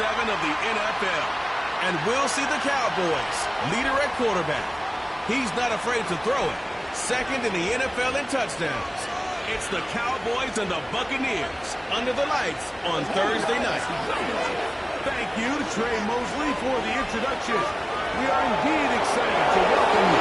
of the NFL, and we'll see the Cowboys, leader at quarterback. He's not afraid to throw it. Second in the NFL in touchdowns. It's the Cowboys and the Buccaneers under the lights on Thursday night. Thank you to Trey Mosley for the introduction. We are indeed excited to welcome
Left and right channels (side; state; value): both; identical; correlation 1.00